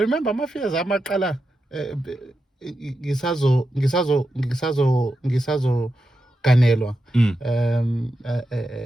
my fears amaqala ngisazo ganelwa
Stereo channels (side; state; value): both; normal; correlation 0.88